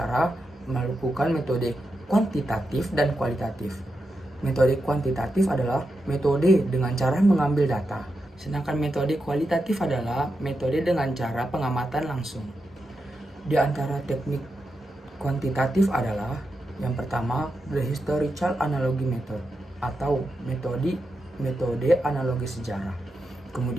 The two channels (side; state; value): both; normal; correlation 0.87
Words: melakukan metode kuantitatif dan kualitatif. Metode kuantitatif adalah metode dengan cara mengambil data. Sedangkan metode kualitatif adalah metode dengan cara pengamatan langsung. Di antara teknik kuantitatif adalah yang pertama, the historical analogy method atau metode analogi sejarah.